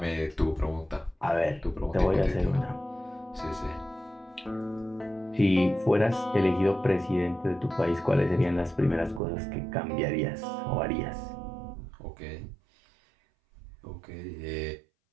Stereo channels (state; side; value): drops out; left; at 9.2 s